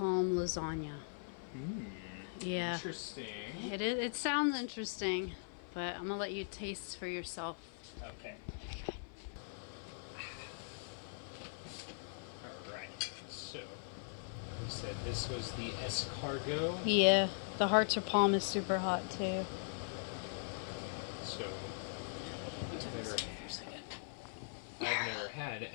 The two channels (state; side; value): silent; right; 51 dB below the other